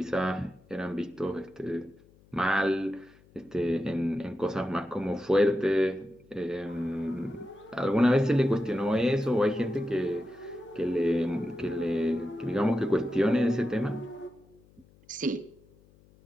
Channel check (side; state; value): left; noise; hum, 29 dB below the sound